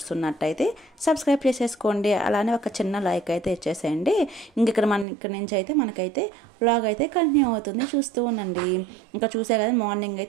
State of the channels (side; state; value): left; drops out; at 5.1 s